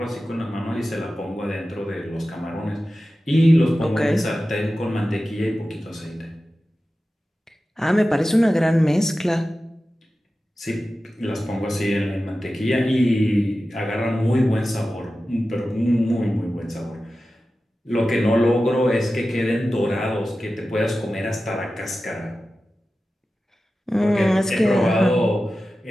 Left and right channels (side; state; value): both; normal; correlation 0.94